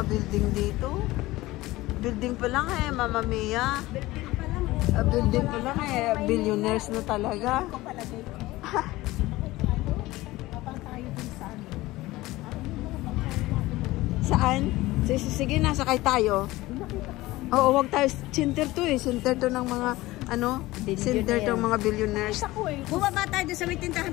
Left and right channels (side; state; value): right; quieter; 18.6 dB